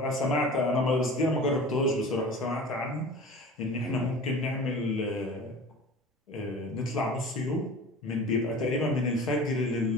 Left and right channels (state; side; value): normal; both; correlation 0.39